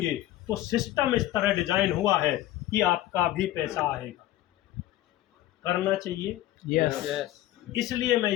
तो सिस्टम इस तरह डिजाइन हुआ है कि आपका भी पैसा आएगा। करना चाहिए, यस। इसलिए मैं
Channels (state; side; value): quieter; right; 14.6 dB